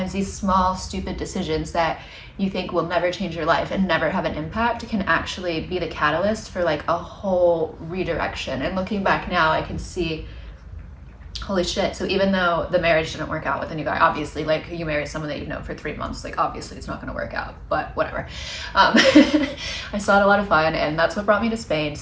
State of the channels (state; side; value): identical; both; correlation 1.00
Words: these small, stupid decisions that you think will never change your life and never have an impact can actually be the catalyst for like a whole redirection. And looking back now, I can see, holy shit. So even though the marriage didn't work out with a new guy, obviously, like you marry someone that you've known for 3 months, like obviously it's not going to work out, but whatever. I still had a lot of fun and that's what brought me to Spain.